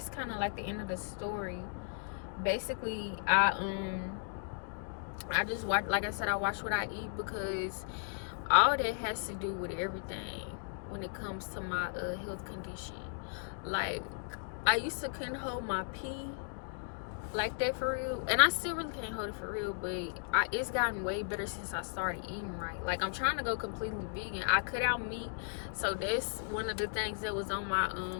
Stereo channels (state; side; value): silent; right; digital silence